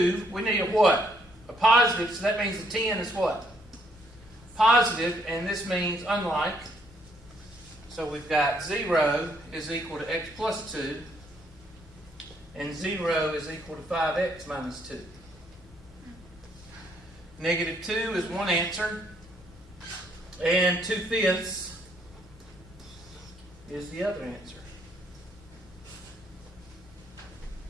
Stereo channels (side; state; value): both; normal; correlation 0.70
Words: we need a what? A positive, so that means the 10 is what? Positive, and this means unlike. So we've got 0 is equal to x plus 2, and 0 is equal to 5x minus 2. Negative 2 is one answer, and 2/5 is the other answer.